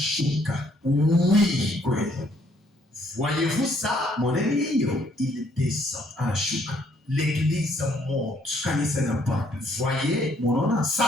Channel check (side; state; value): both; normal; correlation 0.67